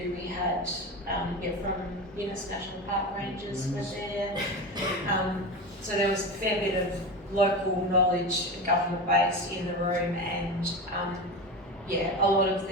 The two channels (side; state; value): both; normal; correlation 0.24